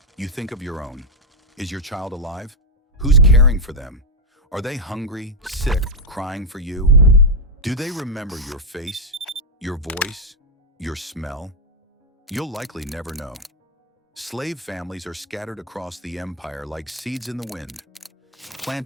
you think of your own. Is your child alive? Who's caring for them? Are they hungry, sick, crying for you? Do they remember your face, your voice, your smell? You'll likely never know. Slave families are scattered across the empire like seeds in the wind,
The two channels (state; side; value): normal; both; correlation 0.01